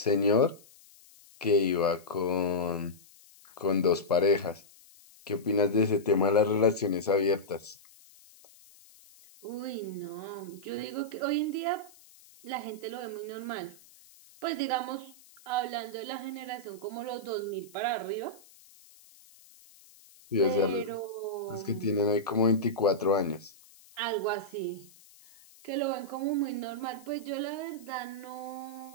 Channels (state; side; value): noise; left; hiss, 25 dB below the sound